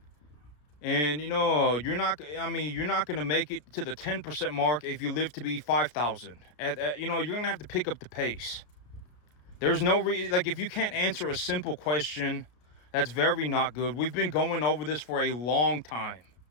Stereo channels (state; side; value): late; right; 33 ms